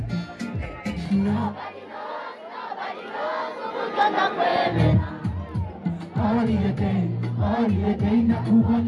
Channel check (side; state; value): both; identical; correlation 1.00